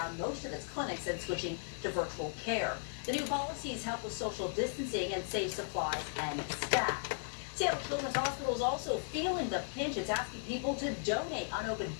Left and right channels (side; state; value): right; silent; 53 dB below the other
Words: most of its clinics and switching to virtual care. The new policies help with social distancing and save supplies and staff. Seattle Children's Hospital is also feeling the pinch. It's asking people to donate unopened